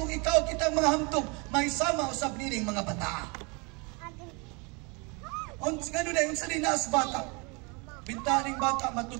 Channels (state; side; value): quieter; left; 30.1 dB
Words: ikaw kitang mga hamtog, may sama usab nining mga bata. Gano'n na yung salinas bata. Bintaning bata,